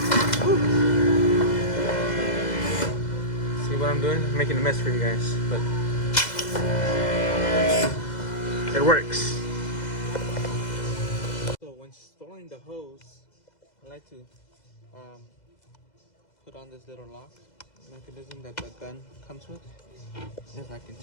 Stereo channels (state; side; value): late; right; 2.0 ms